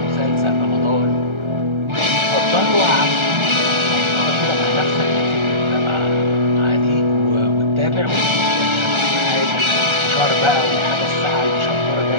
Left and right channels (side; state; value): left; late; 1.3 ms